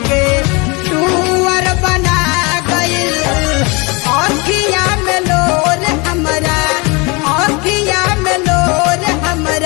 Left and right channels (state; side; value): quieter; right; 27.9 dB